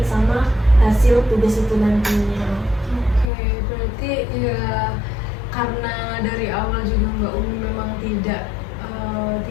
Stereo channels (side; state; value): right; drops out; at 3.2 s